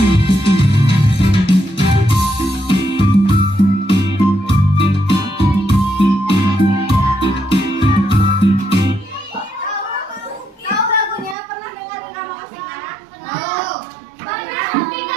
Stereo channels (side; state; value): left; drops out; at 11.4 s